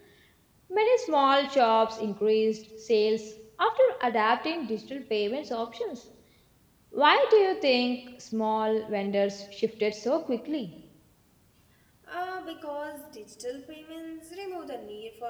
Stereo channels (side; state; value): both; identical; correlation 1.00